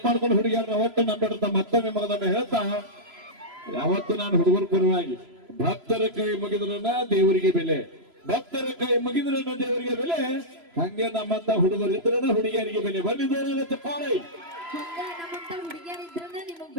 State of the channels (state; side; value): late; left; 3.0 ms